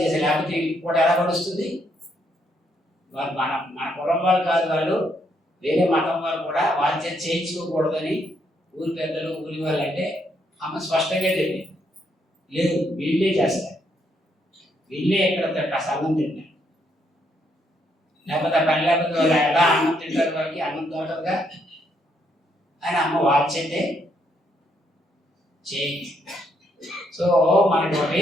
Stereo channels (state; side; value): normal; both; correlation 0.74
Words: చేసే, లేకపోతే కూడా ఎలా పడుస్తుంది. వాళ్ళు మన కులం వాళ్ళు కాదు, వాళ్ళు వేరే మతం వాళ్ళు కూడా వాళ్ళ చేత చేయించుకోకూడదని ఊరి పెద్దలు ఊరి వాళ్ళు అంటే అమ్మ స్పష్టంగా చెప్పింది, లేదు వీళ్ళే చేస్తారు, వీళ్ళే ఎక్కడ అన్నం తింటారు, లేకపోతే పని లేకపోతే వాళ్ళు ఎలా అన్నం తింటారు, వాళ్ళకి అన్నం దొరకదుగా అని అమ్మ వాళ్ళ చేతే చేయించు. సో మనకి ఒకటి